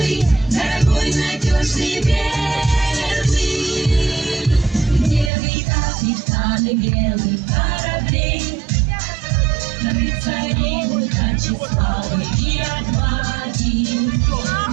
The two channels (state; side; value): drops out; left; at 5.3 s